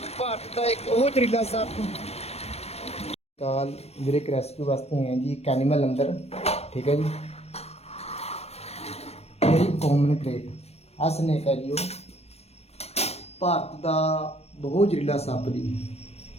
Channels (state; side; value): late; right; 0.31 ms